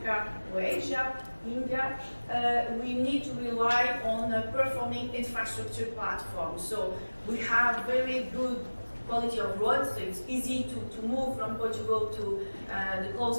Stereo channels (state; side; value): inverted; both; correlation -1.00